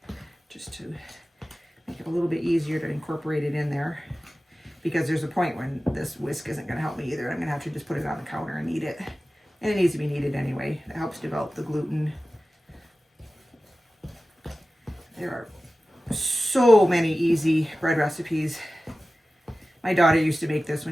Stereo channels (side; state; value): both; normal; correlation 0.96